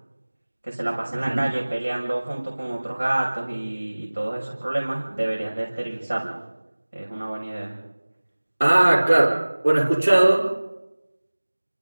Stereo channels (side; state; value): both; inverted; correlation -1.00